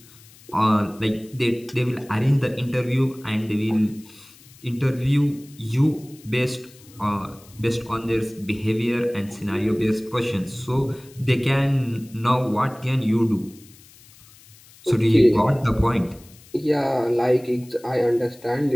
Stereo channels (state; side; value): noise; left; hiss, 24 dB below the sound